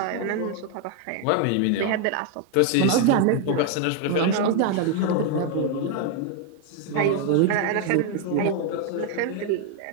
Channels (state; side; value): different; both; correlation 0.01